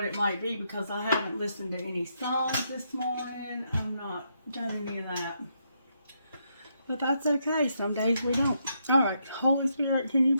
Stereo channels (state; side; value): inverted; both; correlation -0.78